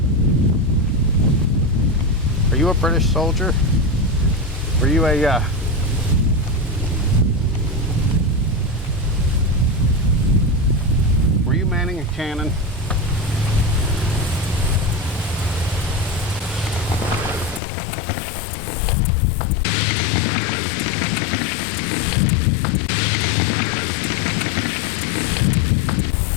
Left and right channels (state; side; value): drops out; right; at 17.6 s